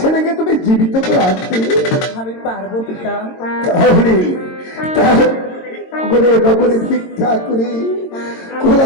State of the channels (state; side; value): late; right; 22 ms